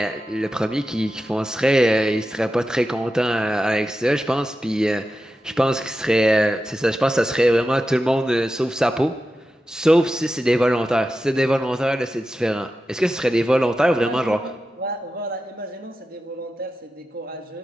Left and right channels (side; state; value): both; normal; correlation 0.91